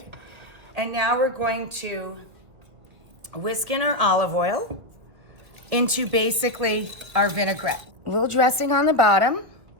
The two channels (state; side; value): late; left; 2.1 ms